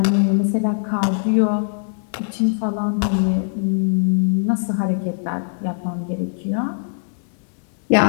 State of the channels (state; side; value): silent; right; digital silence